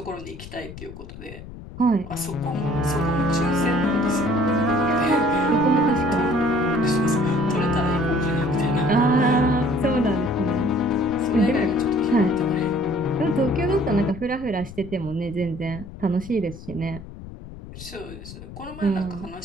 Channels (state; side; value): noise; left; rumble, 14 dB below the sound